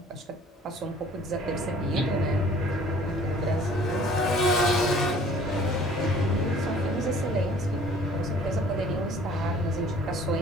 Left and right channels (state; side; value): normal; both; correlation 0.52